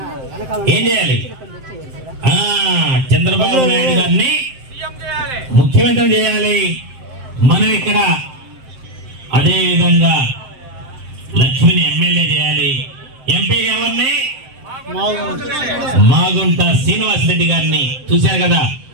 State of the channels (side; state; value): left; late; 7.7 ms